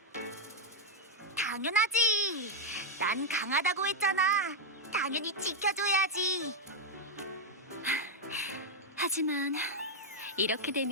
당연하지. 난 강하다고 했잖아. 당연히 지켜줘야지. 하지만 이렇게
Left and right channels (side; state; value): both; normal; correlation 0.00